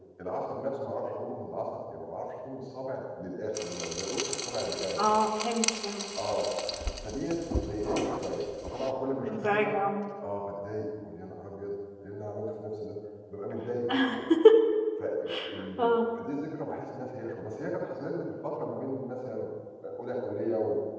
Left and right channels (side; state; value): both; identical; correlation 1.00